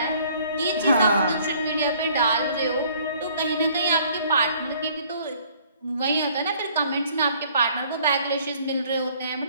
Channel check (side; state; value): both; inverted; correlation -0.58